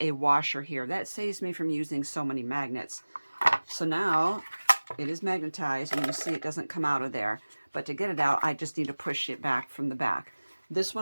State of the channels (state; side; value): inverted; both; correlation -1.00